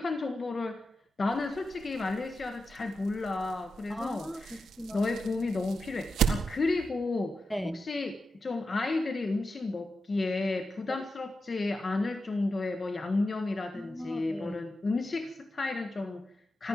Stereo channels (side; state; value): both; normal; correlation 0.89